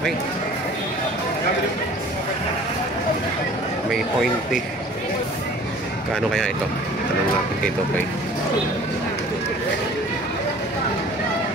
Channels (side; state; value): both; normal; correlation 0.48